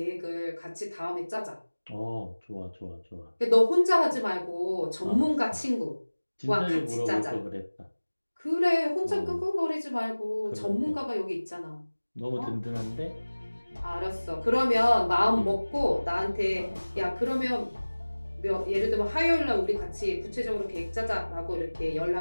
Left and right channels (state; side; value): inverted; both; correlation -1.00